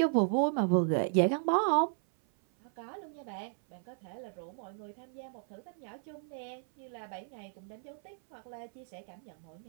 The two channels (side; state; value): left; silent; 55 dB below the other